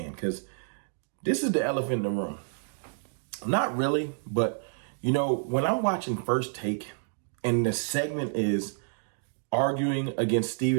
because this is the elephant in the room. Not really, but you know, when I'm watching First Take and the segment is arguing against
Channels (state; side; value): silent; left; digital silence